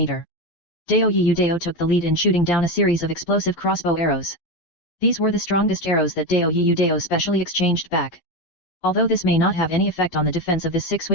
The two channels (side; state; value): right; late; 12 ms